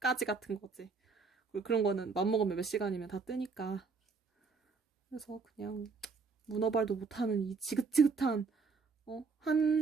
같은 거지. 그리고 그런 거는 맘먹으면 몇 시간이면 다 뜨니까. 그래서 그냥 문어발도 못하는 이 지긋지긋한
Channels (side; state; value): left; quieter; 4.7 dB